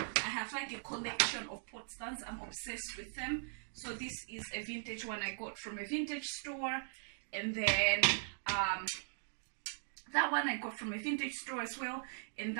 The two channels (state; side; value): silent; left; digital silence